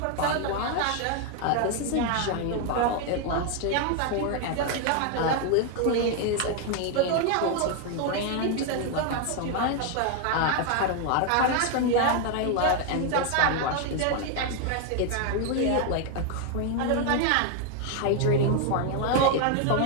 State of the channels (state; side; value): different; both; correlation 0.01